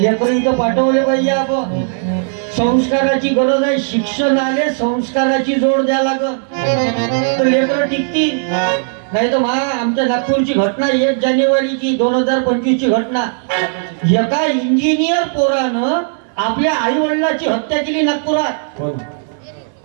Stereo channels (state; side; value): silent; left; 65 dB below the other